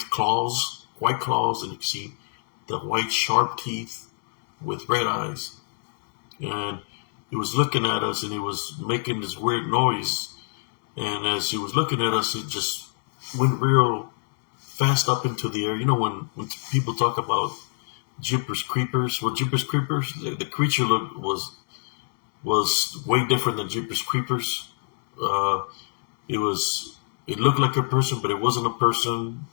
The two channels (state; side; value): silent; right; 59 dB below the other